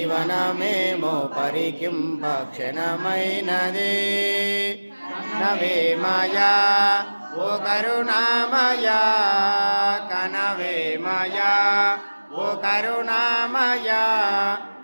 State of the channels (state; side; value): inverted; both; correlation -1.00